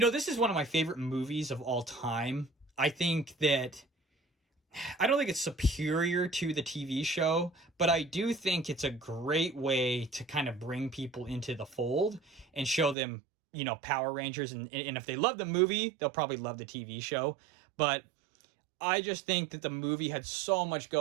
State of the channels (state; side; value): drops out; left; at 13.0 s